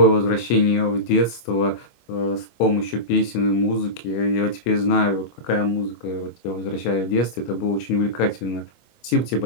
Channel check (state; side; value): late; right; 25 ms